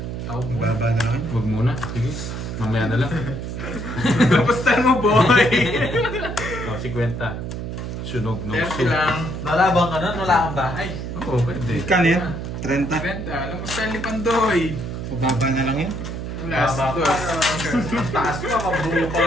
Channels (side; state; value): right; noise; hum, 6 dB below the sound